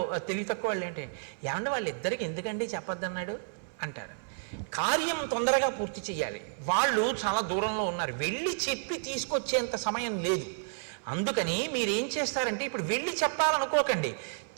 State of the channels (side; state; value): left; silent; 57 dB below the other